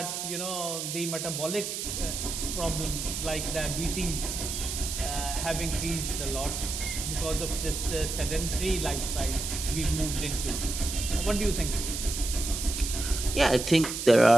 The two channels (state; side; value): noise; right; hiss, 4 dB below the sound